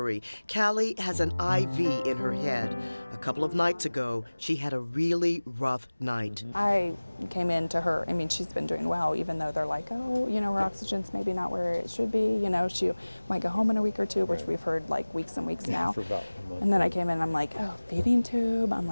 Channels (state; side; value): inverted; both; correlation -1.00